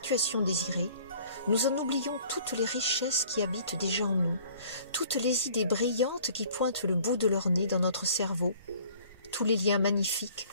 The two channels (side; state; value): both; inverted; correlation -0.53